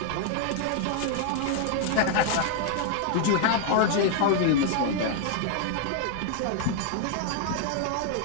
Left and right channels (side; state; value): both; different; correlation 0.00